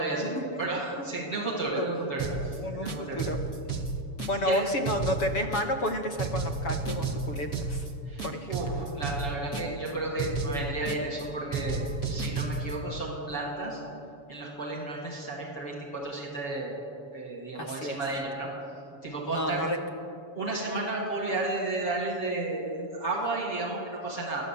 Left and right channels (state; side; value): late; right; 7.1 ms